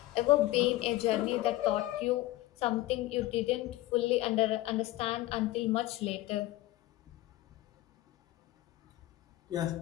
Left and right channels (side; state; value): right; quieter; 16.9 dB